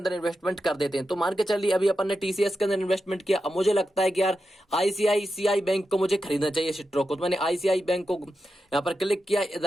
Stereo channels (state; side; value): normal; both; correlation 0.89